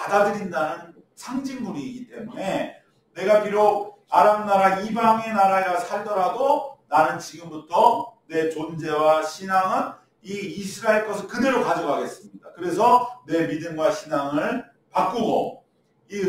상징물이기 때문에 내가 비록 아람 나라 이방의 나라에 살더라도 나는 지금부터 내 존재와 신앙은 이 이스라엘 것을 그대로 가져가겠습니다. 그래서 내 믿음과 신앙을 바꾸고 이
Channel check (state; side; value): identical; both; correlation 1.00